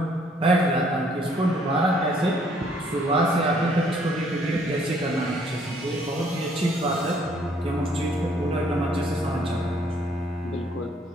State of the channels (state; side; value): normal; both; correlation 0.64